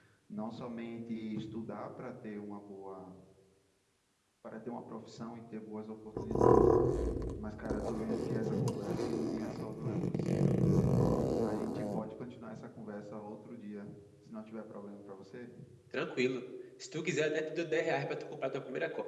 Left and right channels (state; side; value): identical; both; correlation 1.00